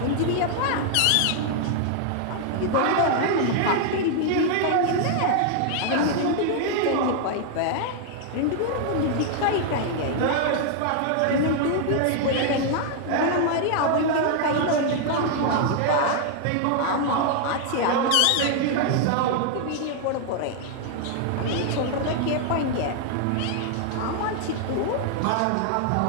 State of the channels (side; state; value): both; different; correlation 0.00